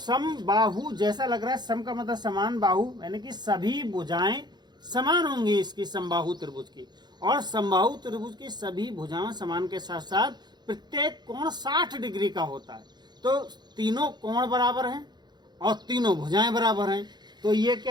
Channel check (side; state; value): left; late; 0.21 ms